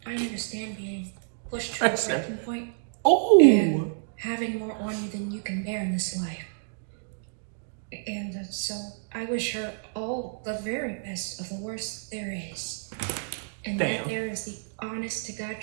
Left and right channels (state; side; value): silent; left; digital silence